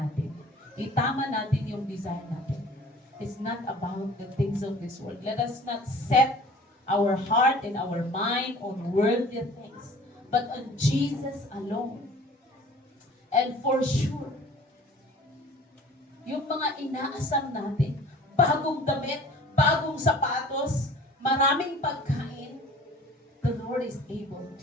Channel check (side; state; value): both; normal; correlation 0.47